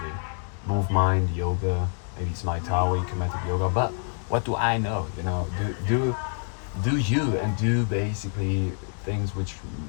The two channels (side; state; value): right; silent; 55 dB below the other